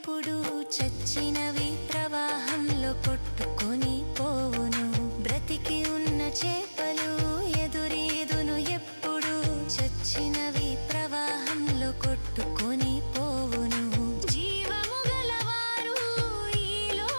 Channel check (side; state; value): both; inverted; correlation -1.00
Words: చచ్చినవి ప్రవాహంలో కొట్టుకొని పోవును. బ్రతికి ఉన్న చేపలు ఎదురీదును ఎప్పుడు, చచ్చినవి ప్రవాహంలో కొట్టుకొని పోవును. జీవము గలవారు ఈ